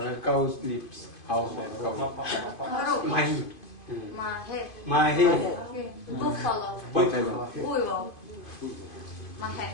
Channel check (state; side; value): late; right; 2.5 ms